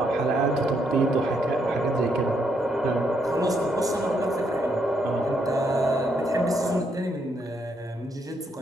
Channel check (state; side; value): normal; both; correlation 0.75